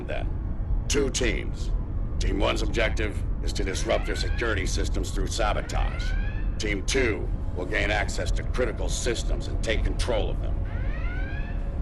then, 2 teams. Team 1's objective is to disrupt their security systems through sabotage. Team 2 will gain access to critical systems and take control of them.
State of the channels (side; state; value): both; identical; correlation 1.00